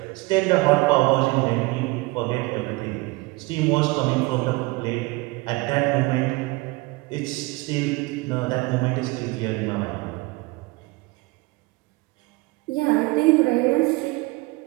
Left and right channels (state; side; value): quieter; left; 23.5 dB